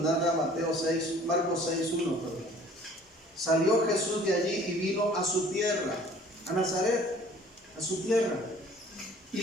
Marcos 6:1. Salió Jesús de allí y vino a su tierra, a Nazaret, a su tierra, y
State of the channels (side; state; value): both; normal; correlation 0.52